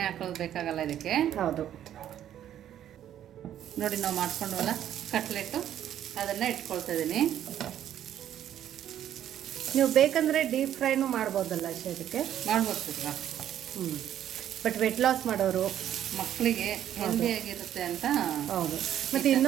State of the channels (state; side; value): quieter; left; 10.9 dB